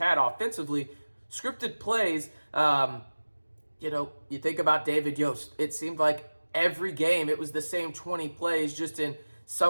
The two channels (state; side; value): inverted; both; correlation -1.00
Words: offensively, scripted plays, you think about David Yost. It seemed like every game it was the same 20 plays, just in